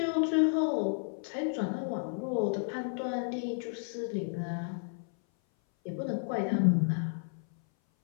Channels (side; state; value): right; silent; 56 dB below the other